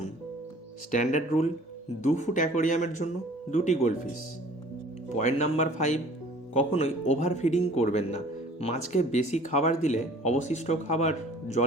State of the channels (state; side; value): normal; both; correlation 0.50